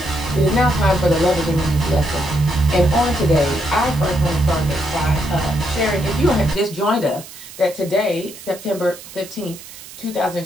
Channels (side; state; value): right; noise; hiss, 16 dB below the sound